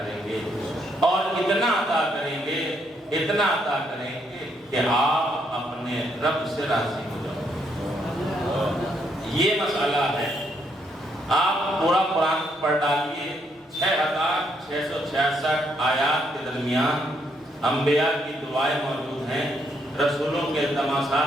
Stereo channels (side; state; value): both; normal; correlation 0.74